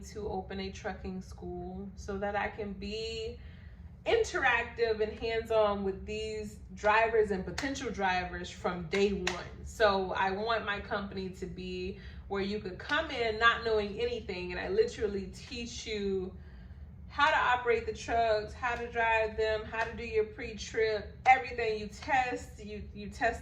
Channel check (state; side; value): identical; both; correlation 1.00